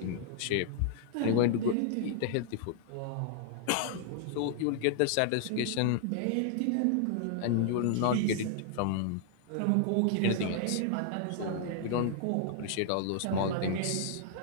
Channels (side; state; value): both; different; correlation 0.00